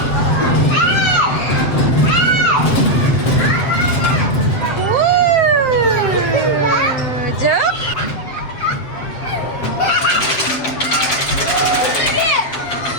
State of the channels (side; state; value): right; late; 7.5 ms